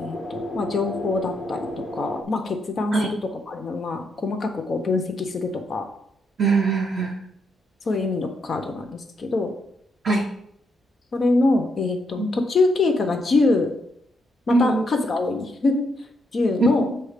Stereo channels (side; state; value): both; normal; correlation 0.78